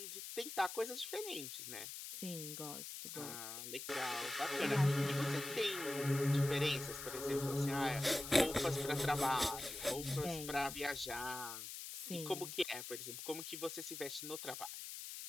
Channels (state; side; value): noise; left; hiss, 8 dB below the sound